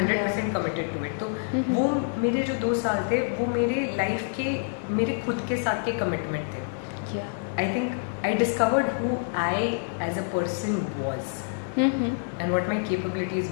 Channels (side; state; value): right; silent; 60 dB below the other